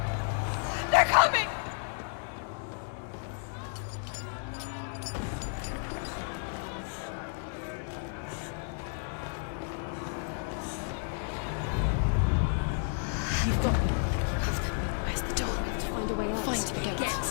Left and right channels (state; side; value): silent; right; 57 dB below the other